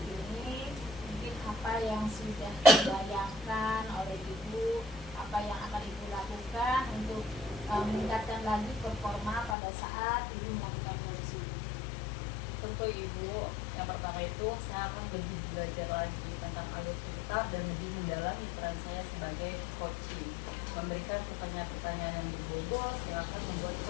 ini, mungkin apa yang sudah dibayangkan oleh Ibu, apa yang akan Ibu lakukan untuk meningkatkan lagi performa pada saat Ibu melakukan coaching? tuh Ibu, yang pertama itu saya akan lebih belajar lagi tentang alur cerita dan lebih mendalami peran saya sebagai coaching, memberikan pertanyaan-pertanyaan yang berbobot yang akan membuat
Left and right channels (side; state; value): right; drops out; at 9.6 s